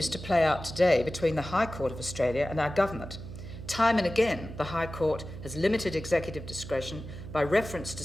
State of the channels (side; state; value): right; noise; hum, 11 dB below the sound